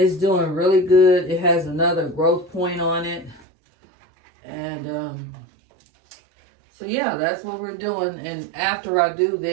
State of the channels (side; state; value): left; drops out; at 3.4 s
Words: doing really good. It has another growth point on it. And so yeah, that's what we're doing. And after I do